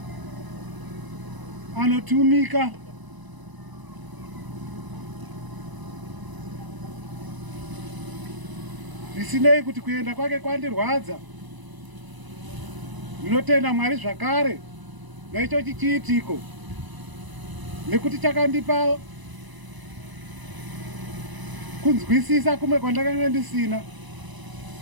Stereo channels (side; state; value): left; late; 1.0 ms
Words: anotumika, zvisinei kuti kuenda kwake kwandirwadza. Ndinotenda Mwari zvakare naicho chiitiko, nekuti chakandipa kunzwisisa kumwe kwandakanga ndisina,